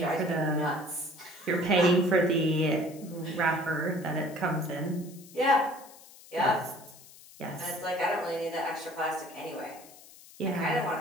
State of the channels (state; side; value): noise; left; hiss, 21 dB below the sound